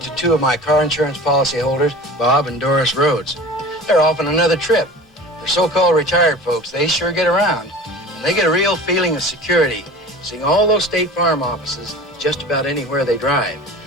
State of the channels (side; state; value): both; normal; correlation 0.38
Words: to two of my car insurance policy holders, Bob and Doris Rhodes. They're off on another trip. For so-called retired folks, they sure get around. And they get a real feeling of security, seeing all those State Farm offices just about anywhere they drive.